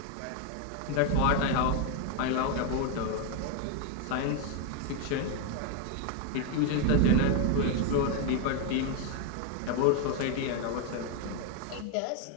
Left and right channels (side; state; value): both; different; correlation 0.01